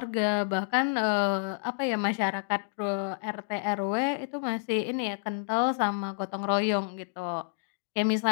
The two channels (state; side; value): silent; right; digital silence